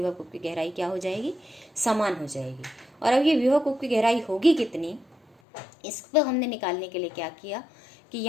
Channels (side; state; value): right; drops out; at 5.4 s